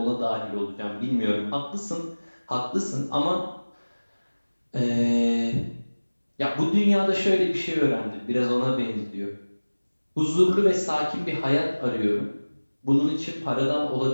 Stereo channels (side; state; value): both; inverted; correlation -1.00